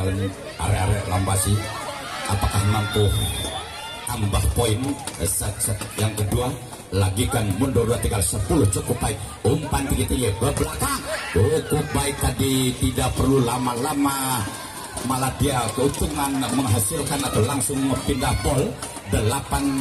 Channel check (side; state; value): both; identical; correlation 1.00